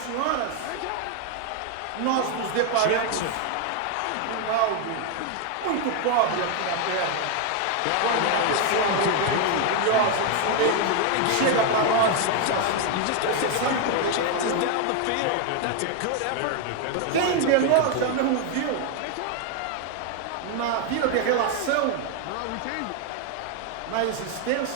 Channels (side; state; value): both; different; correlation 0.01